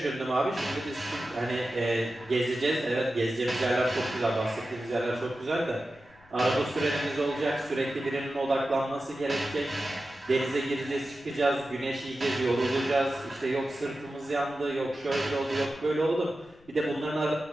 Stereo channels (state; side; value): noise; left; rumble, 28 dB below the sound